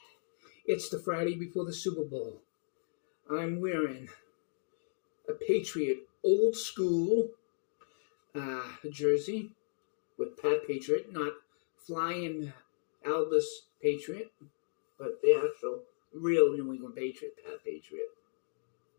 it's the Friday before the Super Bowl. I'm wearing a Patriot old school jersey with Pat Patriot, not flying Elvis Patriot, but the actual real New England Patriot, Pat Patriot.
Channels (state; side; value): silent; right; digital silence